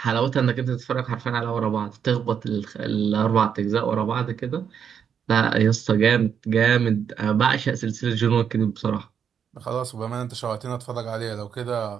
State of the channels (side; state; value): left; quieter; 7.7 dB